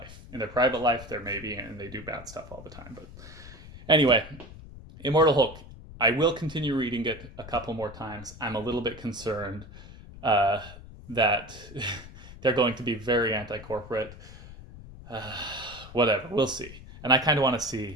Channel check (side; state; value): left; noise; rumble, 16 dB below the sound